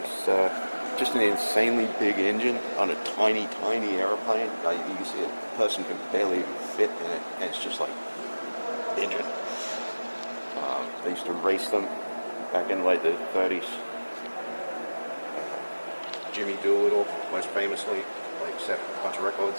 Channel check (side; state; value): both; inverted; correlation -1.00